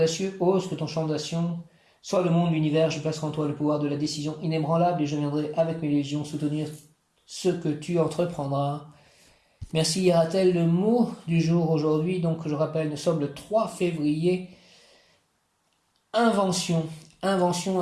Ose que ton champ d'action soit le monde, l'univers. Je placerai en toi le pouvoir de la décision inébranlable et je viendrai avec mes légions soutenir ce que tu entreprendras. Merci Hieratel, le mot du jour aujourd'hui, donc je rappelle, nous sommes le 3 février. Invention.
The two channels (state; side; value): identical; both; correlation 1.00